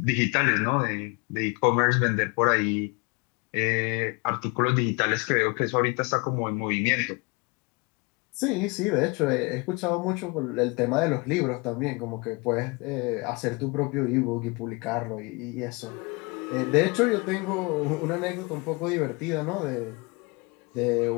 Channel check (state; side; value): quieter; right; 28.1 dB